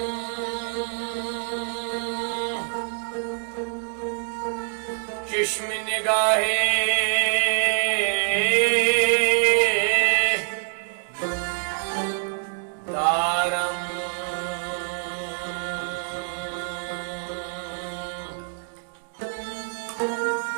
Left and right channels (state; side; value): silent; left; 61 dB below the other